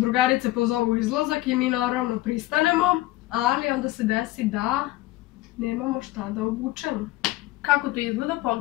pozovu u izlazak i mi naravno pristanemo, ali onda se desi da nemamo šta da obučemo. Kako to izgleda,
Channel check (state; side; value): quieter; right; 17.7 dB